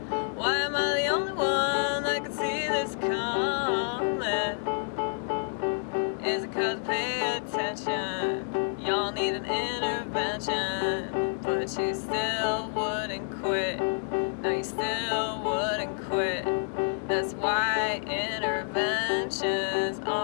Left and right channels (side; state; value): right; silent; digital silence